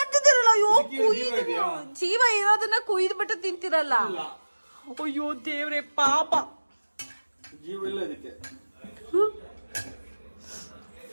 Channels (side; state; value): both; inverted; correlation -1.00